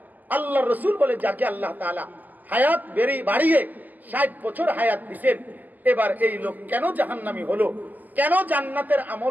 আল্লাহ রাসূল বলে, যাকে আল্লাহ তাআলা হায়াত বাড়িয়ে 60 বছর হায়াত দিবেন, এবার এই লোক কেন জাহান্নামী হলো, কেন জান্নাতের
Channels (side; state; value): left; late; 0.083 ms